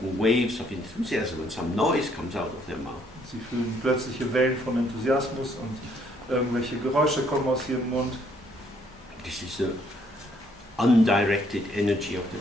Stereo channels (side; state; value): both; normal; correlation 0.67